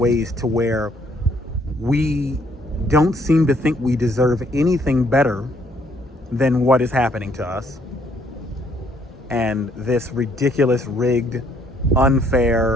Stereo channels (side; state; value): both; normal; correlation 0.67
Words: to where we don't seem to think we deserve anything better than what is happening to us. And this ridiculous, rigged,